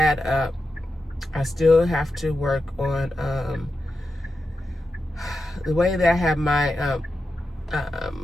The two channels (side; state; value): both; normal; correlation 0.89